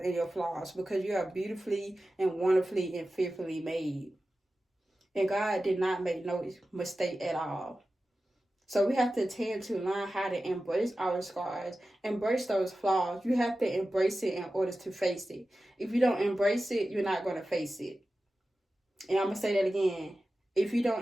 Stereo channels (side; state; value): both; normal; correlation 0.94